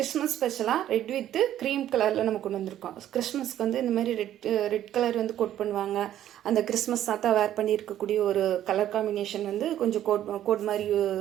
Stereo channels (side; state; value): left; quieter; 11.8 dB